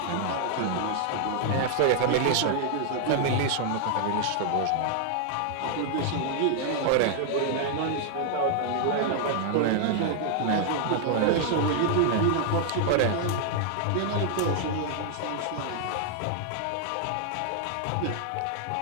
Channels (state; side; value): different; both; correlation 0.00